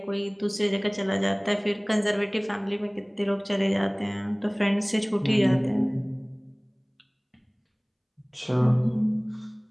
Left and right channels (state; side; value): identical; both; correlation 1.00